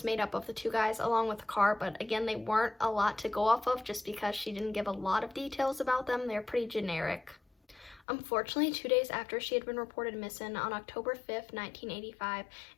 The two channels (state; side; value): drops out; right; at 8.0 s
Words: made up of the two guys along with the car, but again, they weren't a lot to go off of just because she didn't give a lot of details about them. They're pretty generic. Unfortunately, 2 days after she had been reported missing, on October 5th, 1985,